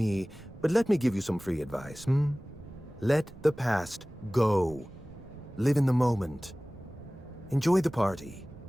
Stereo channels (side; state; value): right; noise; rumble, 21 dB below the sound